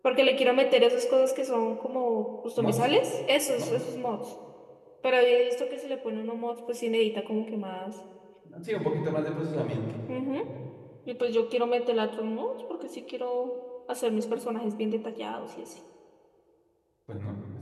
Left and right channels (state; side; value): identical; both; correlation 1.00